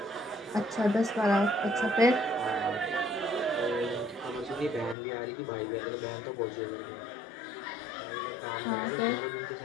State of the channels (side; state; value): right; drops out; at 5.0 s